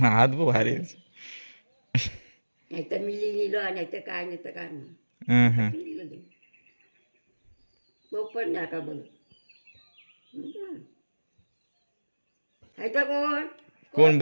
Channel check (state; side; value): inverted; both; correlation -1.00